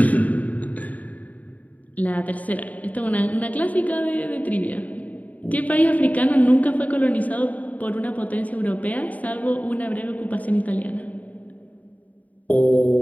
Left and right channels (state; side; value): late; right; 0.073 ms